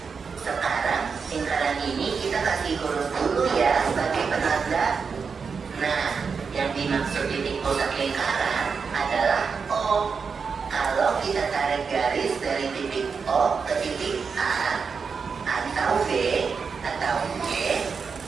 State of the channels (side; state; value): left; quieter; 5.6 dB